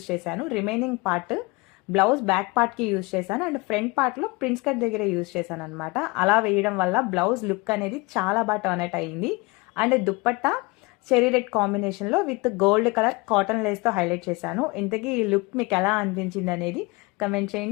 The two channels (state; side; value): quieter; right; 25.6 dB